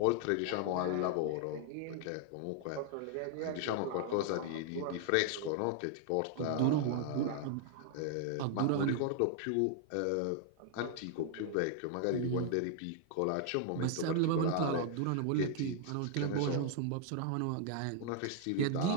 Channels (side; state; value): both; different; correlation 0.00